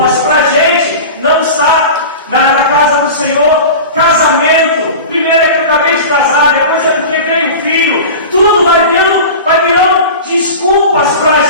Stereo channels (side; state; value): both; inverted; correlation -0.32